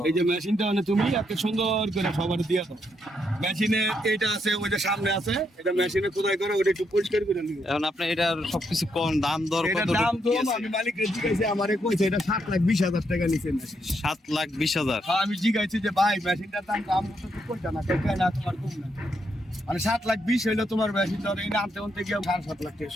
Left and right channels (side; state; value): both; normal; correlation 0.78